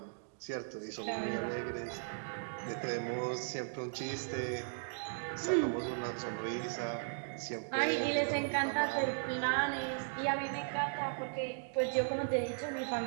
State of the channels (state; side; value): silent; left; digital silence